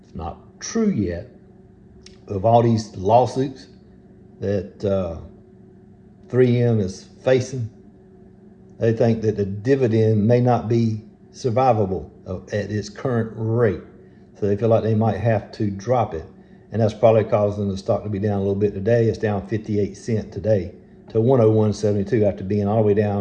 It's not true yet, of all these lawsuits that 3M is facing. They think that the dividend may not be survivable at its current rate. So they feel like they might have to drop it. And that's probably causing the stock to be down a little bit today. It's down 58 cents today to 101.72 after being all the way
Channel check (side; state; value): both; identical; correlation 1.00